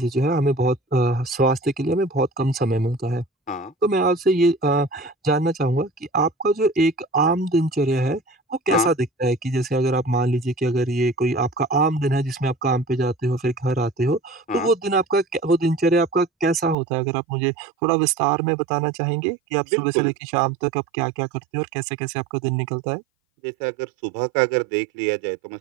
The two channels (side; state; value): left; drops out; at 16.8 s